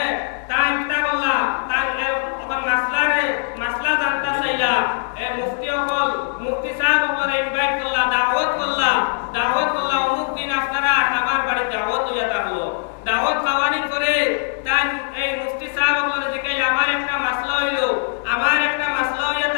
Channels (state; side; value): silent; right; digital silence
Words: তাই কিতা বললাম তার তখন মাসলা জানতে চাইলা। মুফতি সাহেব ওপরে ইনভাইট করলা, দাওয়াত করলা অমুক দিন আপনারা আমার বাড়ি দাওয়াত হইয়া থাকলো। দাওয়াত খাওয়ানির পরে তাই এই মুফতি সাহেব ওপরে জিজ্ঞাসা আমার একটা মাসলা হইয়া